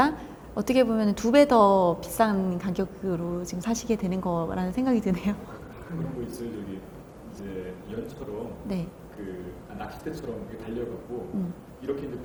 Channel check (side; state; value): both; identical; correlation 1.00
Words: 어떻게 보면 2배 더 비싼 가격으로 지금 사시게 되는 거라는 생각이 드네요. 가끔 그런 거 있어요. 저기 이제 연처럼 네. 그 낚싯대처럼 이렇게 달려갖고 이렇게 이제